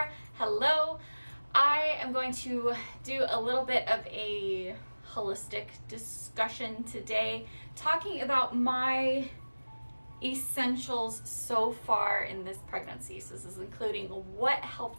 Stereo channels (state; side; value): inverted; both; correlation -1.00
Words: Hello. I am going to do a little bit of a holistic discussion today, talking about my essentials so far in this pregnancy. So this is including what